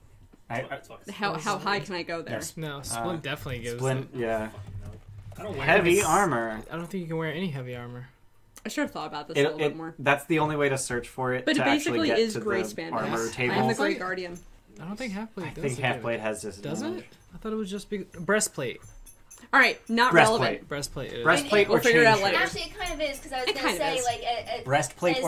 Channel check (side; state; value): both; identical; correlation 1.00